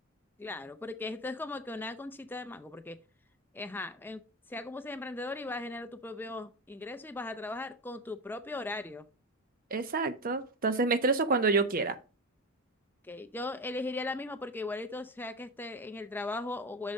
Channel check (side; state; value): both; normal; correlation 0.19